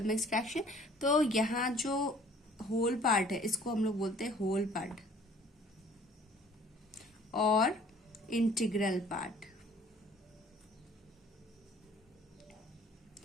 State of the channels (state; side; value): normal; both; correlation 0.54